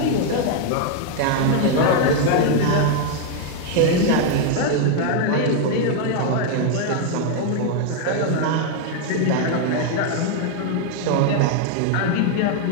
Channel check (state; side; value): different; both; correlation 0.00